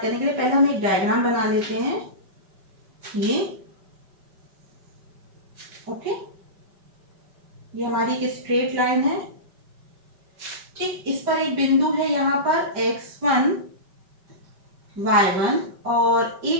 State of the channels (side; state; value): left; late; 5.2 ms